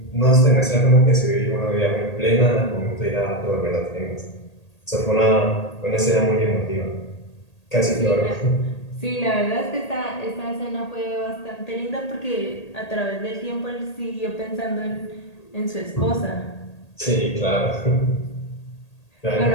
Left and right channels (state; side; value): late; right; 1.8 ms